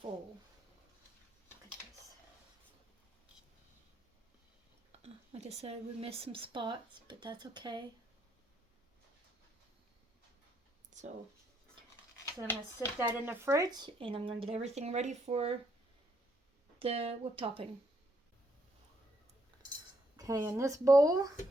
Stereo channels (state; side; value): normal; both; correlation 0.73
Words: Look at this. Like I said, we missed some spots, but that's okay. So I'm going to sit that in the fridge, and I'm going to get everything ready for the whipped topping. Okay, in this bowl,